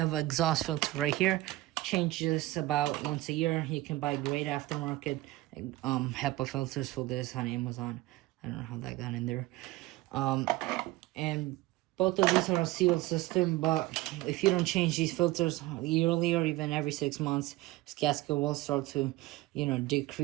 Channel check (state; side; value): quieter; left; 18.3 dB